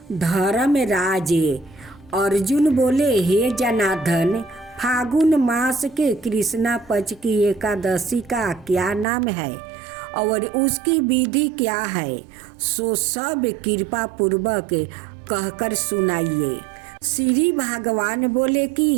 धर्मराज अर्जुन बोले, हे जनार्दन, फागुन मास के कृष्णा पक्ष की एकादशी का क्या नाम है और उसकी विधि क्या है, सो सब कृपा पूर्वक कहकर सुनाइए। श्री भगवान बोले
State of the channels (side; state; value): left; drops out; at 9.1 s